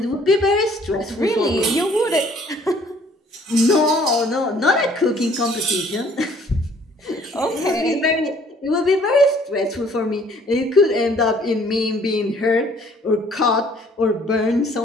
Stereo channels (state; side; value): normal; both; correlation 0.58